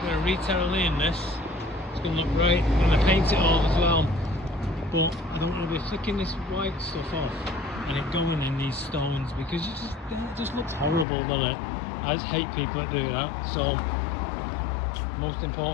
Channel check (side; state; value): right; drops out; at 11.1 s